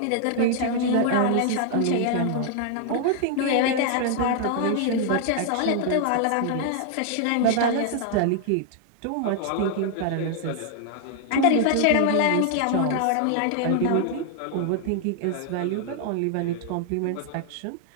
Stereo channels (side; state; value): both; different; correlation 0.00